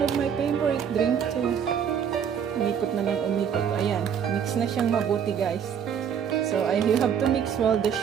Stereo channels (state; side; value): quieter; left; 8.0 dB